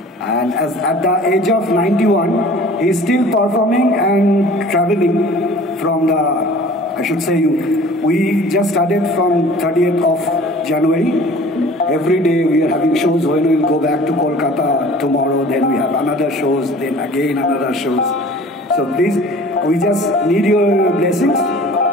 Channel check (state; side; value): normal; both; correlation 0.46